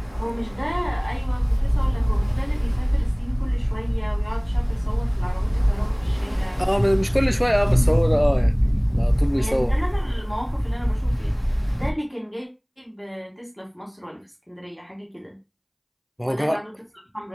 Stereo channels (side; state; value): both; identical; correlation 1.00